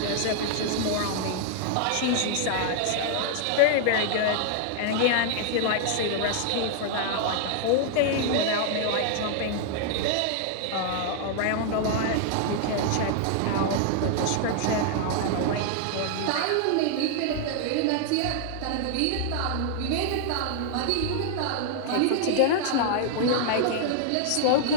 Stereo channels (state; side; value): different; both; correlation -0.01